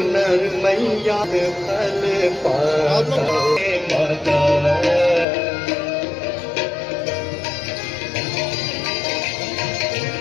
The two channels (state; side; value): drops out; right; at 5.2 s